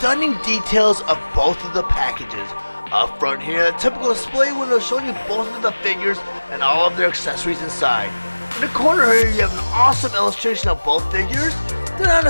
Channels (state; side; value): inverted; both; correlation -1.00